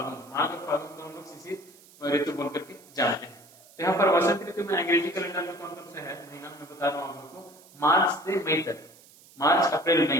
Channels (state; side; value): noise; right; hiss, 25 dB below the sound